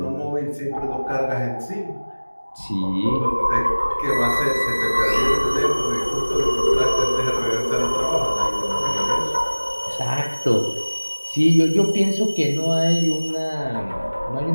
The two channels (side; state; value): both; inverted; correlation -1.00